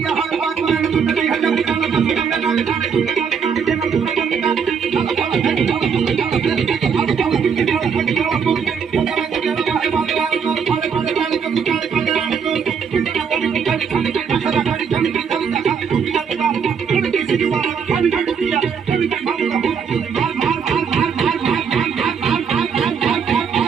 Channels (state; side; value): quieter; left; 6.6 dB